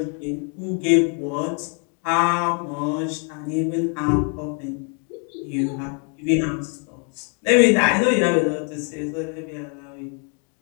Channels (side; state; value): right; quieter; 40.0 dB